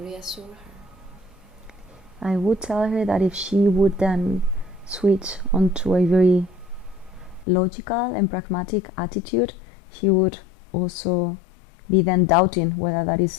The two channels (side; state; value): right; drops out; at 7.5 s